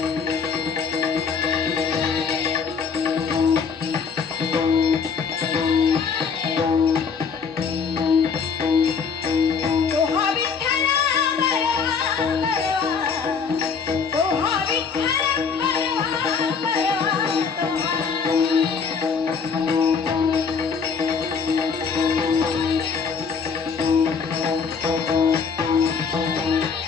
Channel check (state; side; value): quieter; right; 5.8 dB